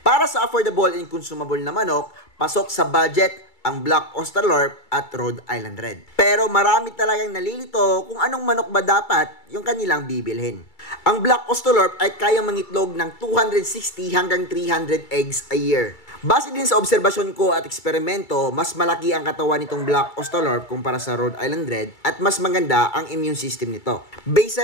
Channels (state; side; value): late; right; 2.3 ms